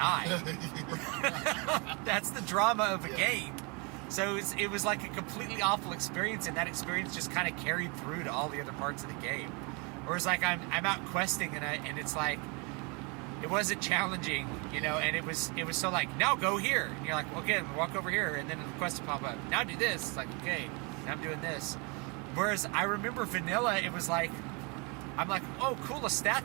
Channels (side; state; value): left; quieter; 31.0 dB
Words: That's the drama of a game. So it was like a completely awful experience, and that experience just kind of carried through to all the other parts of the game. Whereas like I'm out questing, and it's like it wasn't challenging, and it was so like, now go here, and you're like, okay, walk over here, and then the quest will pop up. Now do this. It's like, okay, now I'm doing this. Whereas I remember vanilla, it was like, I'm like, oh, cool, a